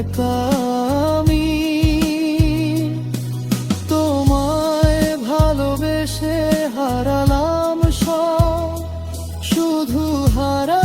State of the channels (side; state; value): both; identical; correlation 1.00